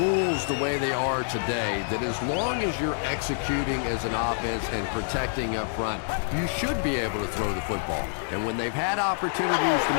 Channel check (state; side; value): silent; right; digital silence